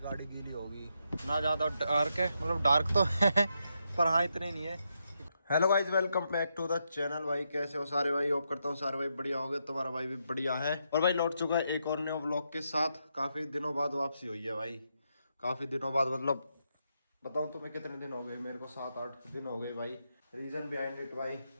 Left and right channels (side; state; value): both; inverted; correlation -0.82